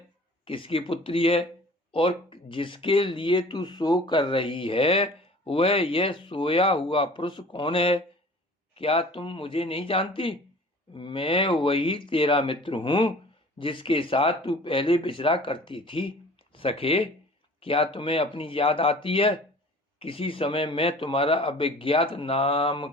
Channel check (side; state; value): both; normal; correlation 0.46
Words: किसकी पुत्री है और जिसके लिए तू शोक कर रही है वह यह सोया हुआ पुरुष कौन है? क्या तुम मुझे नहीं जानती? मैं वही तेरा मित्र हूँ जिसके साथ तू पहले विचरा करती थी। सखे, क्या तुम्हें अपनी याद आती है? किसी समय मैं तुम्हारा अभिज्ञात नाम